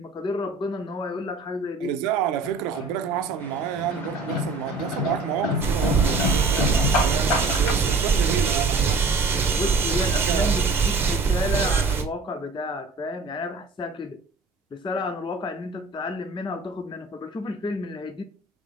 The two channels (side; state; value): left; quieter; 3.5 dB